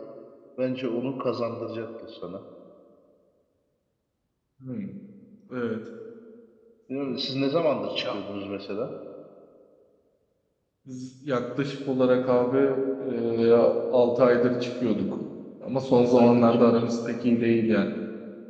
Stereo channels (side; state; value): both; identical; correlation 1.00